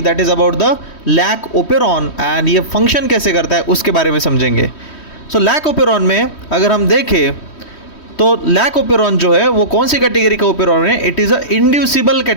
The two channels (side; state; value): right; late; 3.1 ms